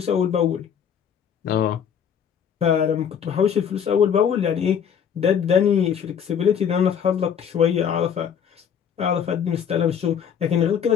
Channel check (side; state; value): right; quieter; 7.9 dB